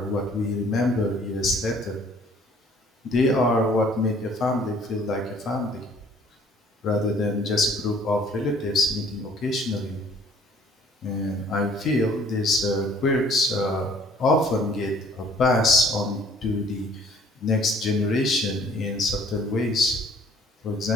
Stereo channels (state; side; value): normal; both; correlation 0.56